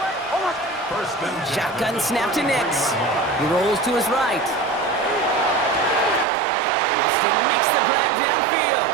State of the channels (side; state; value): left; drops out; at 6.2 s